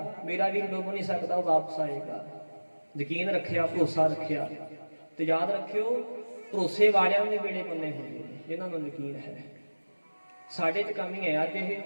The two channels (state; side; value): inverted; both; correlation -1.00